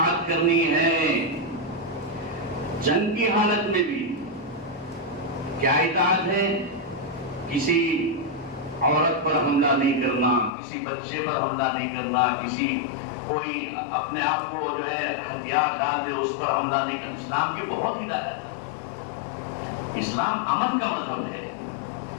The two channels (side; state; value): right; drops out; at 10.5 s